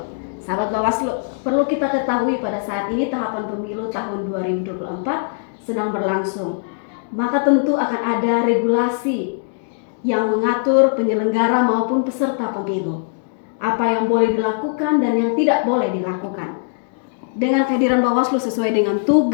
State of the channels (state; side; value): silent; right; digital silence